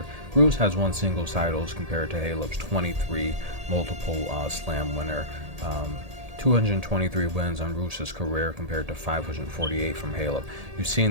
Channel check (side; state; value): left; late; 1.8 ms